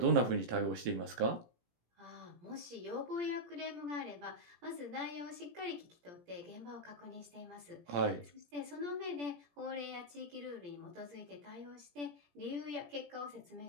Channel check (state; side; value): late; left; 17 ms